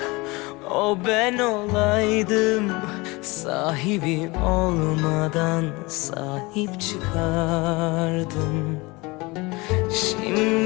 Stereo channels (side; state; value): right; quieter; 24.4 dB